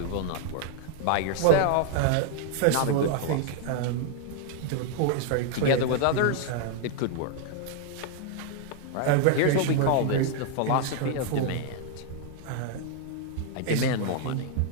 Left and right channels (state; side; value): different; both; correlation 0.00